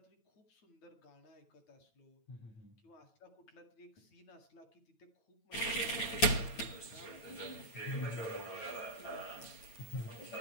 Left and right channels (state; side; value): late; right; 9.1 ms